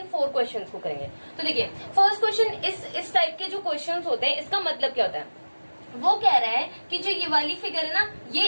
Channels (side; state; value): both; inverted; correlation -1.00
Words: 4 क्वेश्चंस को करेंगे। तो देखिए फर्स्ट क्वेश्चन, इस टाइप के जो क्वेश्चंस होते हैं, इसका मतलब क्या होता है? वो कह रहा है कि जो ये वाली फिगर है ना,